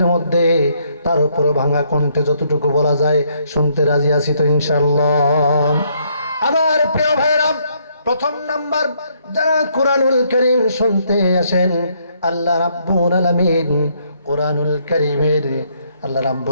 মধ্যে। তার উপরে ভাঙা কণ্ঠে যতটুকু বলা যায় শুনতে রাজি আছি তো ইনশাআল্লাহ। আমার প্রিয় ভাইরা, প্রথম নাম্বার, যারা কোরআনুল কারীম শুনতে আসেন, আল্লাহ রাব্বুল আলামিন কোরআনুল কারীমের আল্লাহ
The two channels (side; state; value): both; inverted; correlation -0.70